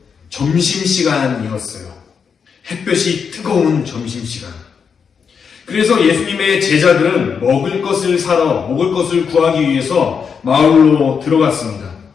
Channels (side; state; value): right; quieter; 6.4 dB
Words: 점심시간이었어요. 햇볕이 뜨거운 점심시간. 그래서 예수님의 제자들은 먹을 것을 구하기 위해서 마을로 들어갔습니다.